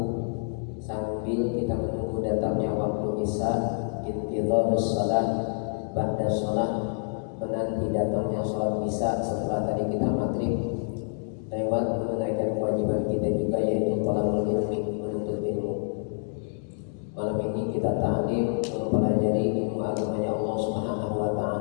sambil kita menunggu datangnya waktu isya, intidharus shalah ba'da shalah, menanti datangnya sholat isya setelah tadi kita maghrib, lewat menunaikan kewajiban kita juga, yaitu thalabul ilmi, menuntut ilmu. Malam ini kita ta'lim mempelajari ilmu agamanya Allah Subhanahu wa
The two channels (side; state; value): right; silent; 60 dB below the other